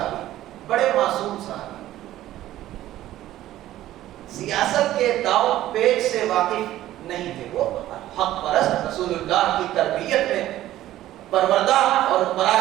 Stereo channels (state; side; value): quieter; left; 14.0 dB